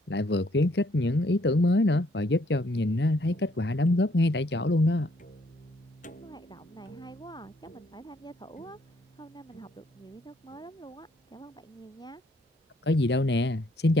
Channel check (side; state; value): both; normal; correlation 0.67